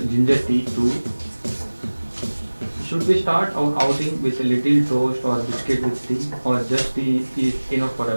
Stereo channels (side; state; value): both; inverted; correlation -1.00